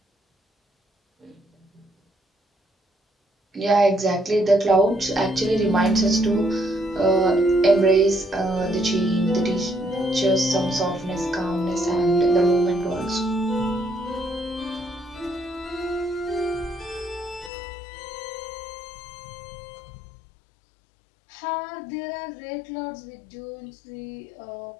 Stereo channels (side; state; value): right; drops out; at 17.5 s